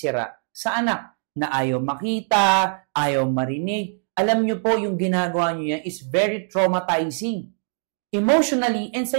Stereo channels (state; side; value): silent; left; digital silence